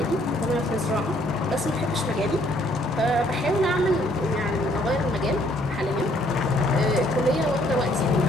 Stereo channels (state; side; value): normal; both; correlation 0.65